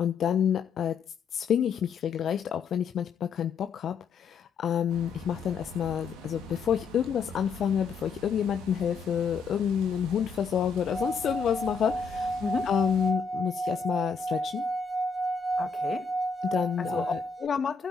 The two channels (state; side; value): quieter; right; 5.8 dB